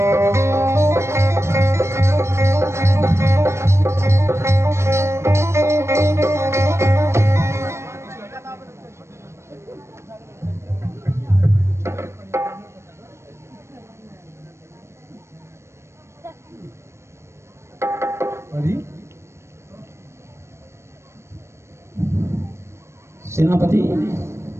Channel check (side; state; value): left; late; 0.13 ms